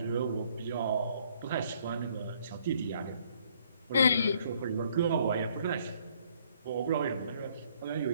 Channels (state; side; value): inverted; both; correlation -0.64